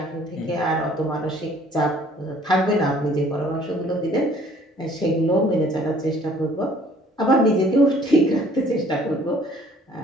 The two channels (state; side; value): normal; both; correlation 0.57